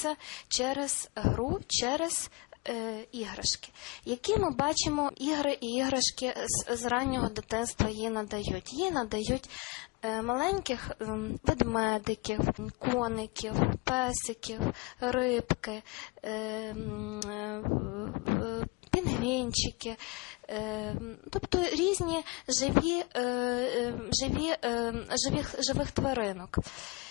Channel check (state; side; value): quieter; right; 26.5 dB